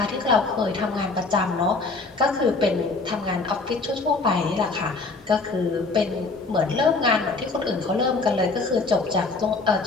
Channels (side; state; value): right; quieter; 3.8 dB